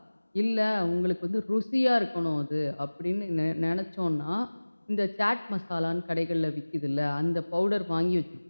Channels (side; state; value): both; inverted; correlation -1.00